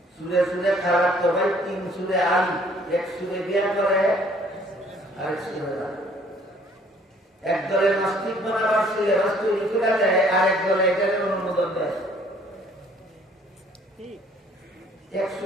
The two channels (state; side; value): normal; both; correlation 0.59